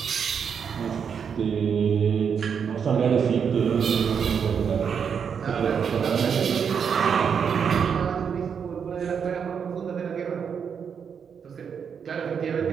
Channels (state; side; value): quieter; left; 7.0 dB